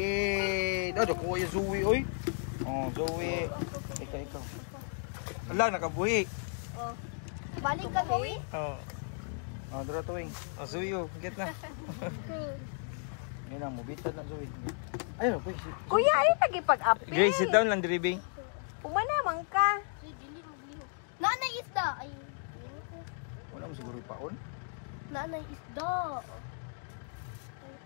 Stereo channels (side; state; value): right; silent; 55 dB below the other